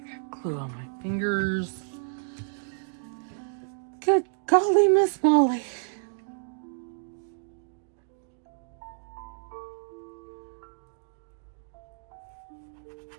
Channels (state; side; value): silent; left; digital silence